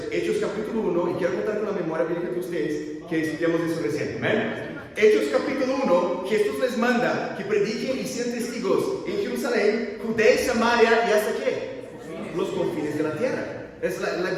Hechos capítulo 1, y quiero contar con la memoria bíblica de ustedes que estudiamos eso recién. ¿Amén? Hechos capítulo 1, Jesús les manda que prediquen y sean testigos en Jerusalén, Judea y Samaria, y hasta qué? Los confines de la tierra. Es la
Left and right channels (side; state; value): both; identical; correlation 1.00